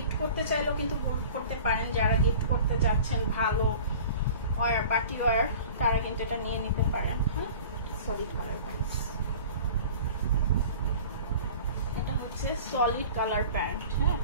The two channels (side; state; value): both; inverted; correlation -0.42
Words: করতে চাইলেও কিন্তু করতে পারেন, যারা গিফট করতে যাচ্ছেন ভালো ওয়্যার, পার্টি ওয়্যার, তারা কিন্তু এটা নিয়ে নিতে পারেন। হ্যাঁ, সলিড কালার প্যান্টস। এটা হচ্ছে সলিড কালার প্যান্ট। হ্যাঁ,